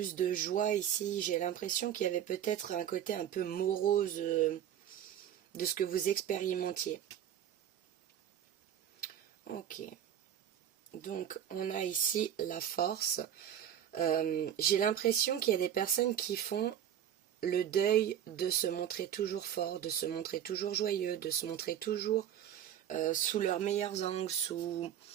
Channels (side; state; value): left; quieter; 10.1 dB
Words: de joie ici. J'ai l'impression qu'il y avait peut-être un côté un peu morose de ce que vous expérimentiez. Ok. Donc, on a ici la force. J'ai l'impression qu'il y a des personnes qui font le deuil de se montrer toujours fort, de se montrer toujours joyeux, de se montrer toujours sous leurs meilleurs angles, sous...